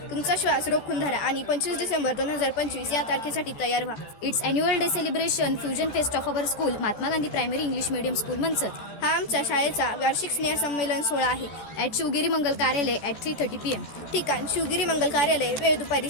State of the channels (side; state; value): right; late; 14 ms